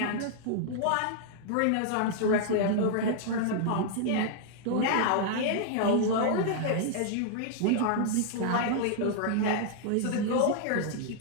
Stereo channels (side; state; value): both; different; correlation -0.01